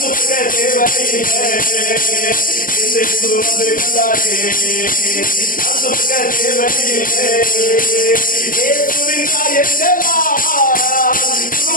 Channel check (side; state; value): right; late; 0.40 ms